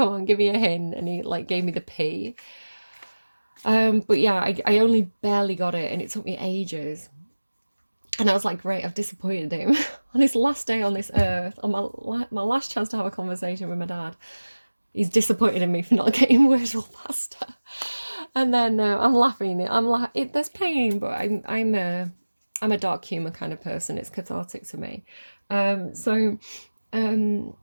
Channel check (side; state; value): both; inverted; correlation -1.00